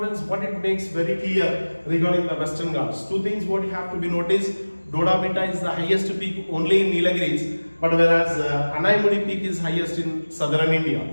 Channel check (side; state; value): both; inverted; correlation -1.00